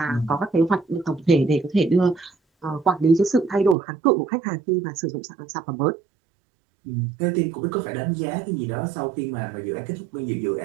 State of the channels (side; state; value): left; drops out; at 3.8 s